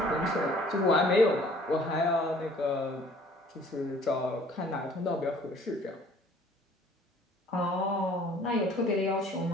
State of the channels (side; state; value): both; normal; correlation 0.55